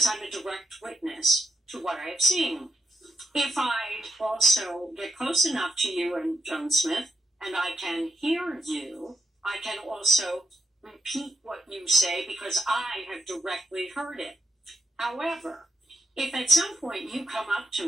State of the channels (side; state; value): both; normal; correlation 0.81